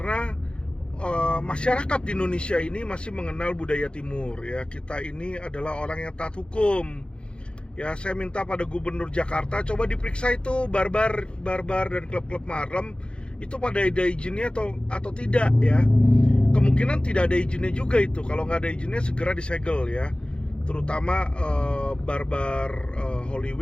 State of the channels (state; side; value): late; right; 0.055 ms